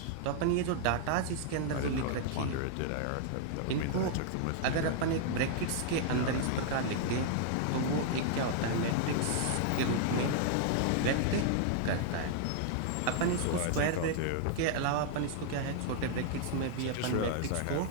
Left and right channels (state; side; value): different; both; correlation 0.00